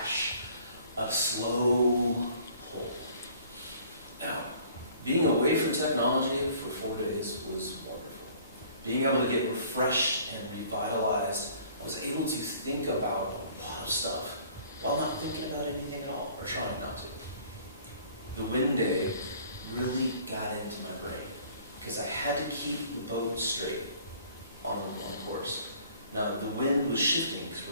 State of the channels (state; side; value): inverted; both; correlation -0.54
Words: a slow pull. Now, being away from technology for 4 days was wonderful. Being able to get refreshed and revitalized, I was able to think about a lot of stuff while not thinking about anything at all, or trying not to. The wind day really got into my brain because I had to keep the boat straight on the course. Now, the wind was shifting because